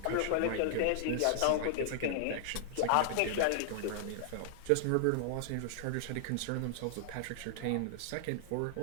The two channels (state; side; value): different; both; correlation -0.01